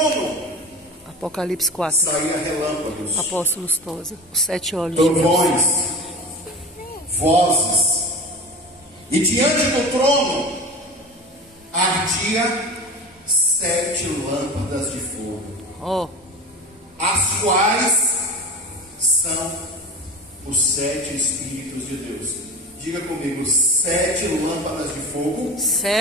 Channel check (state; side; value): normal; both; correlation 0.31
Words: Apocalipse 4. saía relâmpagos, Apóstolos Tosa. Os 7 olhos de Deus. trovões, vozes, e diante do trono ardia 7 lâmpadas de fogo, Ó, as quais são os 7 Espíritos de Deus. Diga comigo, 7 lâmpadas de fogo,